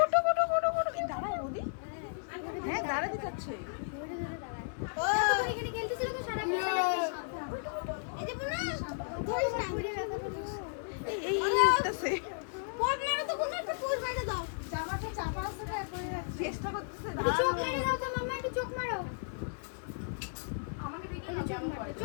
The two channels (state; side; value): silent; right; digital silence